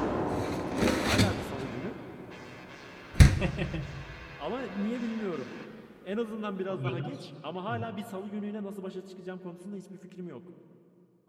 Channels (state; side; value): identical; both; correlation 1.00